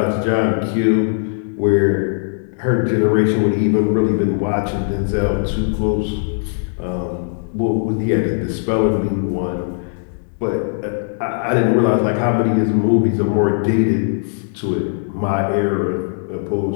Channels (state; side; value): silent; right; digital silence